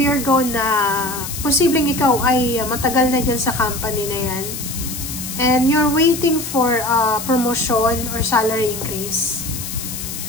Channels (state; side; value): noise; left; hiss, 7 dB below the sound